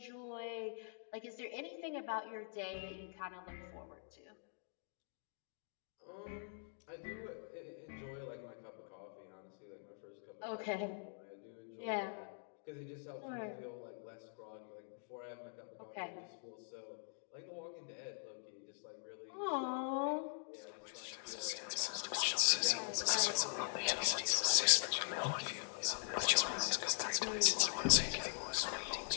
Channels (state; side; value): silent; right; digital silence